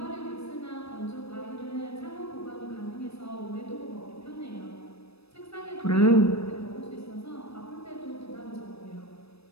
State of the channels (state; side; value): late; right; 0.78 ms